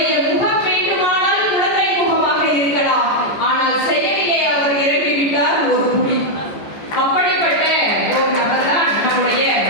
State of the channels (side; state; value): right; late; 14 ms